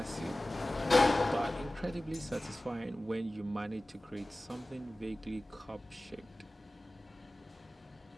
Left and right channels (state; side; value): normal; both; correlation 0.97